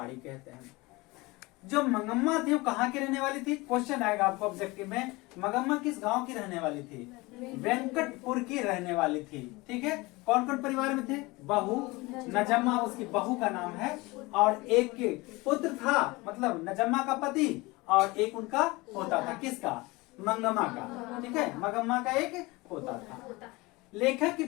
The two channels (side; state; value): right; quieter; 23.0 dB